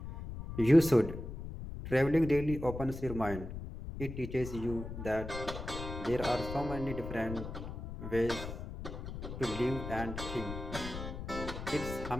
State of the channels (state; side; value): noise; left; rumble, 8 dB below the sound